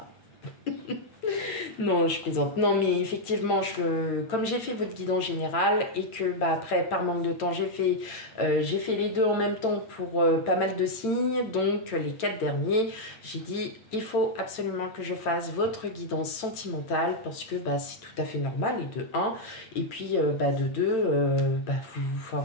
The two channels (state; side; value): late; right; 8.9 ms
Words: Non, je plaisante. Non, mais effectivement, comme j'ai fait votre guidance générale et que après, par manque de temps, j'ai fait les deux en même temps pour pas mal de signes. Donc, les 4 derniers, j'ai dit, il faut absolument que je fasse votre guidance sentimentale parce que c'est tout à fait normal, et de 1. Et puis, de 2,